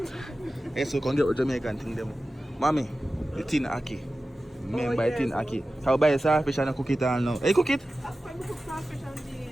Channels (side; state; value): both; normal; correlation 0.95